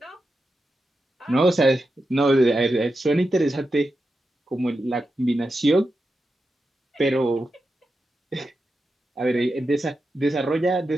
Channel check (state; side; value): normal; both; correlation 0.89